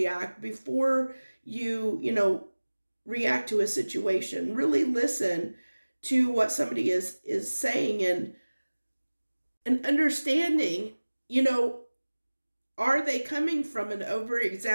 before you react to a situation. Really listen to what somebody is saying, and understanding, are they coming from an over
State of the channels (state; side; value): inverted; both; correlation -1.00